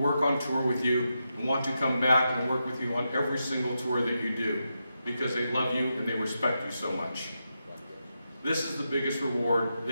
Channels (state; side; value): inverted; both; correlation -0.86